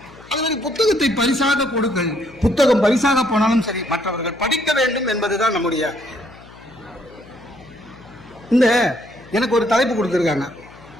அது மாதிரி புத்தகத்தை பரிசாக கொடுங்கள். புத்தகம் பரிசாக போனாலும் சரி, மற்றவர்கள் படிக்க வேண்டும் என்பதுதான் நம்முடைய. இந்த எனக்கு ஒரு தலைப்பு கொடுத்துருக்காங்க.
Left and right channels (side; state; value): left; noise; hum, 22 dB below the sound